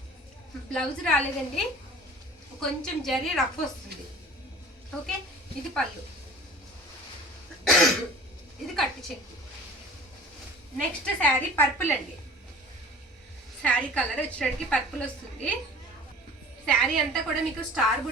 బ్లౌజ్ రాలేదండి, కొంచెం జరీ రఫ్ వస్తుంది. ఓకే, ఇది పళ్ళు, ఇది కట్టు చెక్కు. నెక్స్ట్ శారీ పర్పుల్ అండి. శారీ కలర్ వచ్చేటికి పర్పుల్ వస్తుంది. శారీ అంతా కూడా మీకు స్టార్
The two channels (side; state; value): both; normal; correlation 0.44